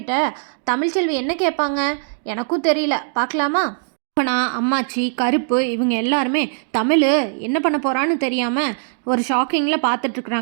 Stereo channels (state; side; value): silent; left; digital silence